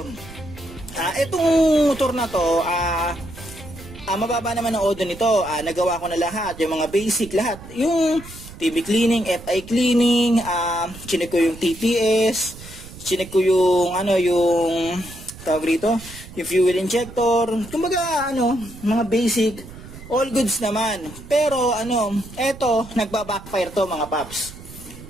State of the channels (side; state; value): right; noise; rumble, 16 dB below the sound